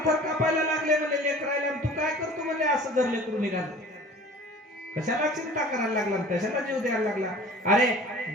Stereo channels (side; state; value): both; normal; correlation 0.45